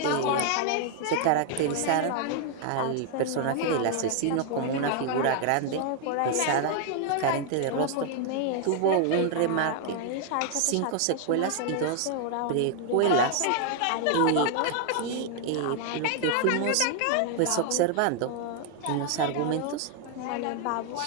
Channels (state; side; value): different; both; correlation 0.00